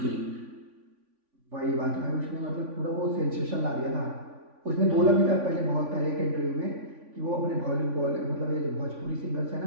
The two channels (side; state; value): left; late; 3.5 ms